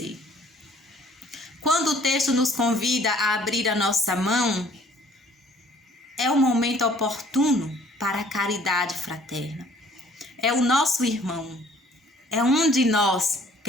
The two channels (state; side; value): normal; both; correlation 0.56